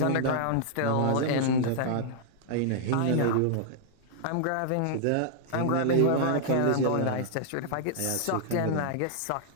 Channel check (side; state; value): both; different; correlation -0.01